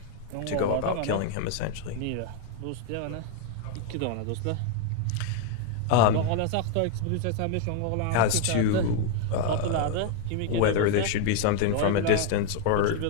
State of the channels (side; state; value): both; different; correlation 0.00